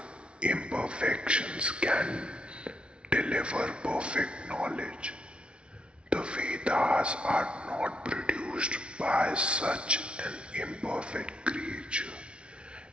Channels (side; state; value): left; late; 0.058 ms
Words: imperfections can deliver perfect knowledge. The Vedas are not produced by such an imperfect creature.